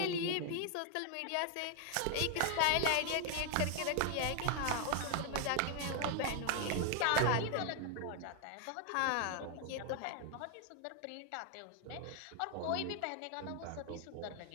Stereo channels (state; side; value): different; both; correlation 0.00